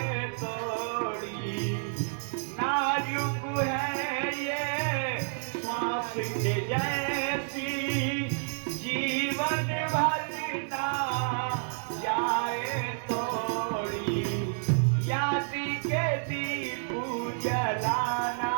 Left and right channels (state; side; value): silent; left; digital silence